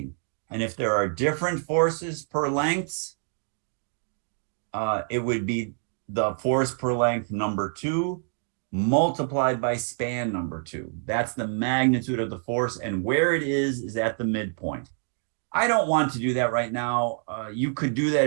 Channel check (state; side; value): silent; left; 60 dB below the other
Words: And if there are different forces per lengths, it would be the force per length number 2 multiplied by span number 2. That's the magnitude of the force, and where it is at the midpoint. I don't want to do that right now. You could do that